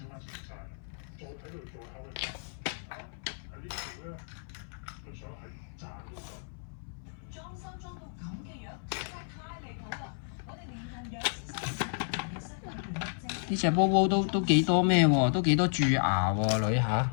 呢隻波波都幾多咩喎？都幾多蛀牙喎，女吓？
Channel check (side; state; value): right; silent; 56 dB below the other